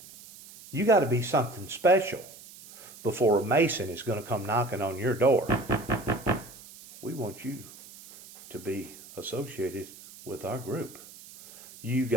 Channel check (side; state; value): right; noise; hiss, 19 dB below the sound